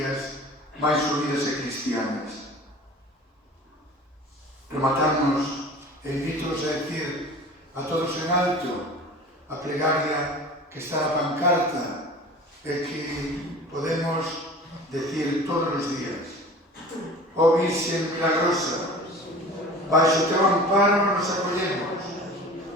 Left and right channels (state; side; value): normal; both; correlation 0.40